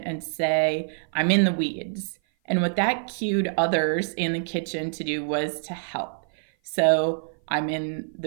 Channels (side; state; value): left; silent; 56 dB below the other